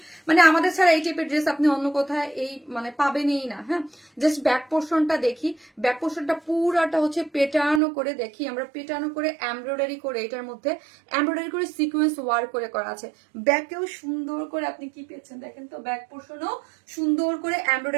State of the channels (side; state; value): left; drops out; at 7.8 s